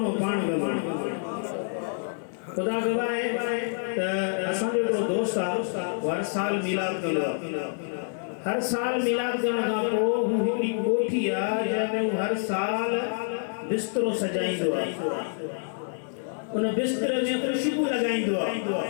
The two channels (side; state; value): right; silent; 60 dB below the other